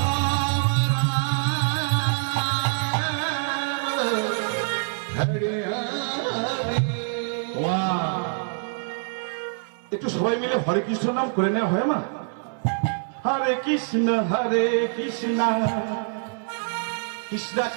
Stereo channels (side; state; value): left; silent; 62 dB below the other